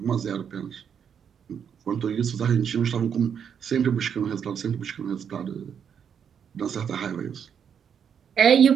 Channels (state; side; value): quieter; left; 7.7 dB